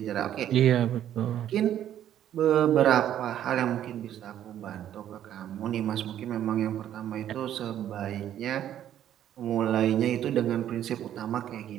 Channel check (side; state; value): left; quieter; 11.0 dB